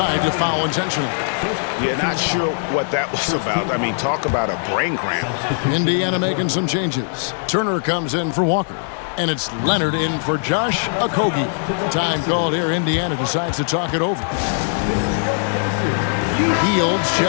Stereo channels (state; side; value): silent; right; 60 dB below the other